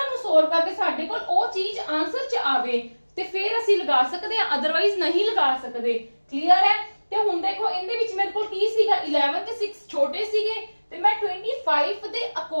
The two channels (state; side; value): inverted; both; correlation -1.00